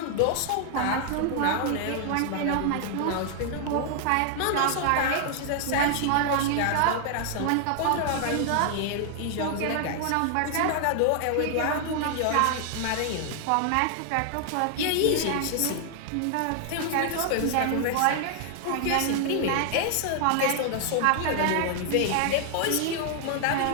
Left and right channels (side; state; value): both; different; correlation 0.00